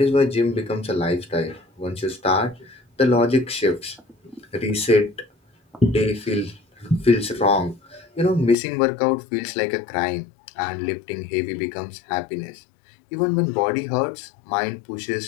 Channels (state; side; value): drops out; right; at 8.6 s